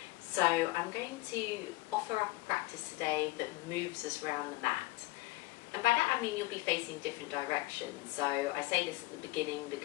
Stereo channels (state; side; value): quieter; right; 20.2 dB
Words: So I'm going to offer up a practice today that moves us around the mat. And by that I mean you'll be facing different directions. So I say this at the beginning